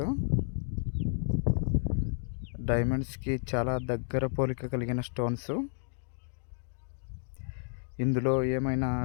డైమండ్స్కి చాలా దగ్గర పోలిక కలిగిన స్టోన్స్. ఇందులో ఏమైనా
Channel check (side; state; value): right; silent; digital silence